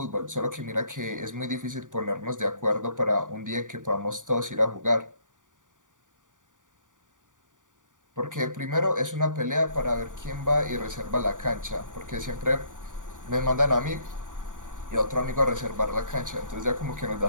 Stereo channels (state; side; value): late; left; 0.87 ms